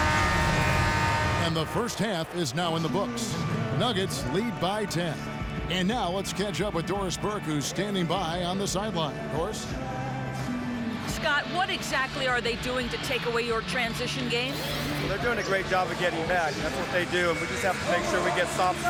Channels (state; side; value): identical; both; correlation 1.00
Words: And the first half is now in the books. Nuggets lead by 10. And now let's catch up with Doris Burke, who's standing by on the sideline. Doris? Scott, what exactly are they doing to take away your transition game? Well, they're doing a great job of getting back. That's what they do, and we just have to make sure we get stops